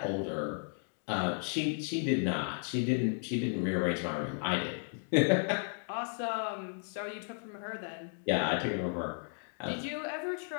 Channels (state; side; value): silent; right; 55 dB below the other